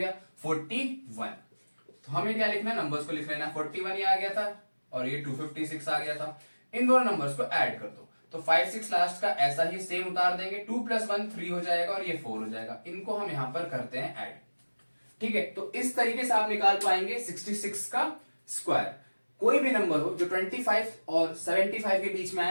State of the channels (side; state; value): both; inverted; correlation -1.00